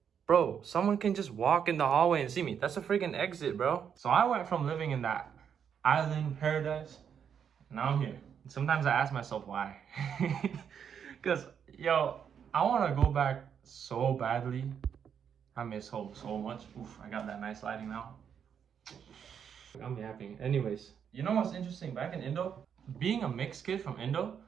Bro, someone can just walk in the hallway and see me. That's a freaking exit, bro. So I went from living in that island paradise, now I'm here. Sometimes I ask myself why. Because, yo, I want to go back so badly. I miss home so much. Oof, I got that nice lighting now. I'm yapping. Anyways, you know what's interesting? Back in Indo, being a mixed kid from Indo,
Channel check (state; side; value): quieter; left; 7.8 dB